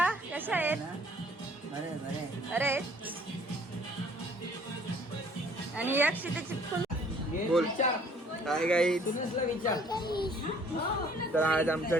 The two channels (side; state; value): both; normal; correlation 0.57